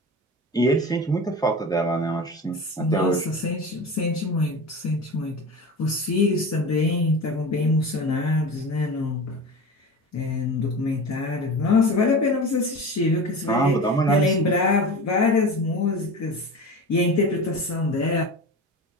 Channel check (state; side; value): normal; both; correlation 0.31